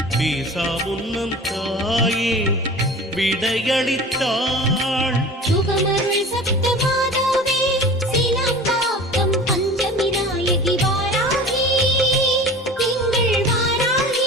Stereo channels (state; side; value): normal; both; correlation 0.38